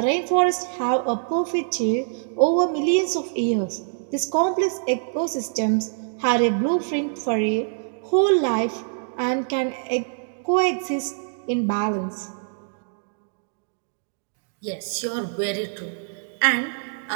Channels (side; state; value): left; silent; digital silence